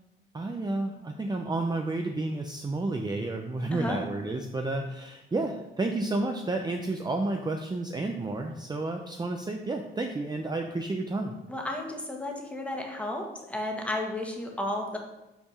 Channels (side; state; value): both; normal; correlation 0.73